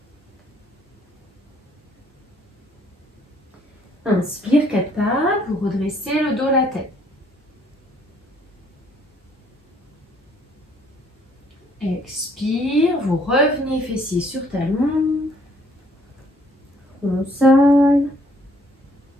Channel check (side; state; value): both; normal; correlation 0.64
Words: Inspire, 4 pattes, vous redressez le dos, la tête. Expire, vous revenez fessier sur talon. Console.